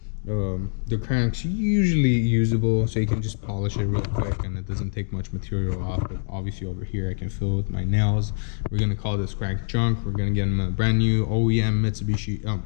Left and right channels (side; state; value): right; silent; 62 dB below the other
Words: the crank's usually usable, so you can just polish it real quick and it doesn't take much material off. But obviously over here I can fill with my nails. We're gonna call this crank junk. We're gonna get him a brand new OEM Mitsubishi,